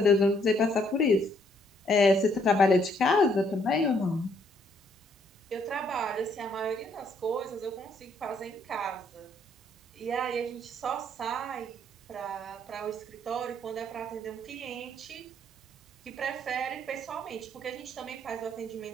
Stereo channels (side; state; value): both; normal; correlation 0.68